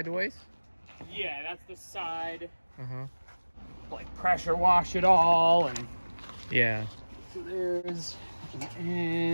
Yeah, that's the side. Uh-huh. Like pressure wash it all, and Yeah. so there's an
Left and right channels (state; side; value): inverted; both; correlation -1.00